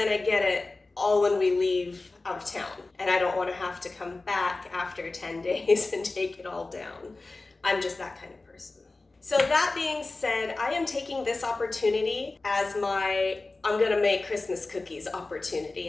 get it all when we leave out of town, and I don't want to have to come back after 10 days and take it all down. I'm just that kind of person. So that being said, I am taking this opportunity as my I'm gonna make Christmas cookies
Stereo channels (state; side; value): quieter; right; 3.3 dB